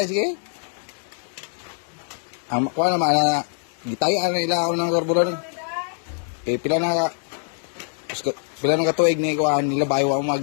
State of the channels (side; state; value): right; silent; digital silence